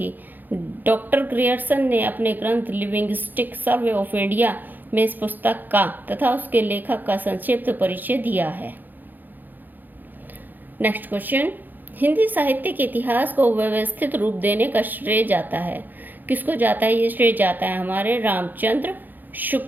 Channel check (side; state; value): left; late; 0.087 ms